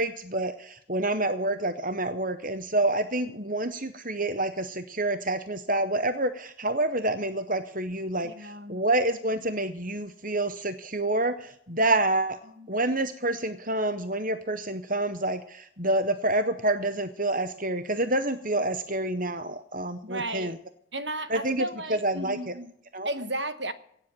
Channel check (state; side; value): normal; both; correlation -0.16